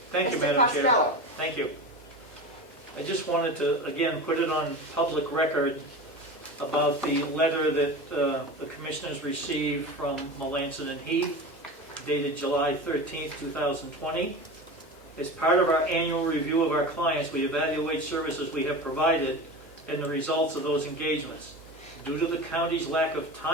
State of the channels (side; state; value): both; normal; correlation 0.29